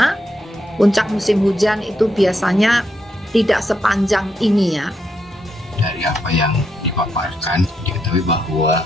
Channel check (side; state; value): both; normal; correlation 0.80